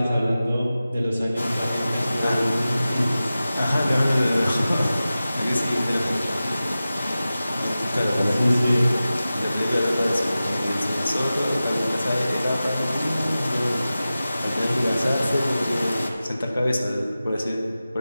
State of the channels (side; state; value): both; inverted; correlation -0.95